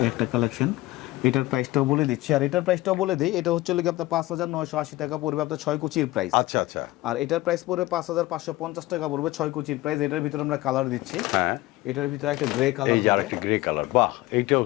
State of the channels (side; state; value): right; quieter; 18.4 dB